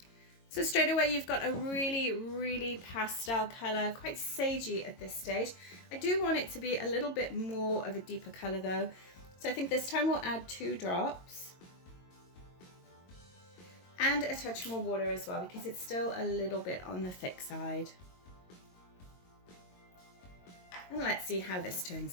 So straight away you've got a really, really pastel color, quite sagey at this stage. I do want it to be a little bit more of a deeper color though. So I think this time we'll add 2 drops. And a touch more water as well, because it's still a little bit on the thick side. And let's see how this turns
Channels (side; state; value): right; late; 22 ms